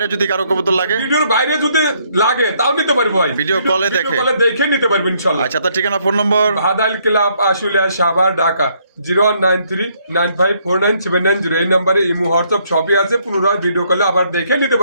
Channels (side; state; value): both; inverted; correlation -0.69